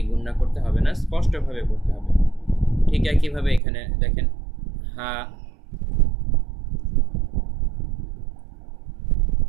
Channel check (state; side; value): drops out; left; at 3.6 s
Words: গুণনা করতে হবে না, স্পষ্টভাবে পড়তে হবে। ঠিক একইভাবে এখানে দেখেন, হা,